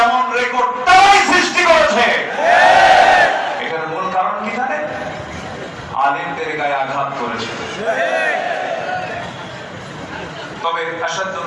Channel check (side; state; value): both; identical; correlation 1.00